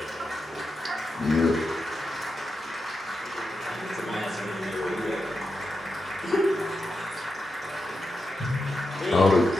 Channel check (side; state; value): both; normal; correlation 0.87